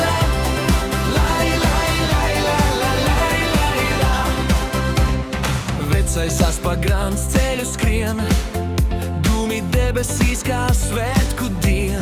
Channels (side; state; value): both; identical; correlation 1.00